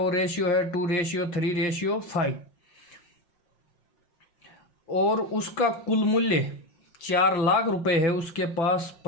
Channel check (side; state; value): right; late; 5.7 ms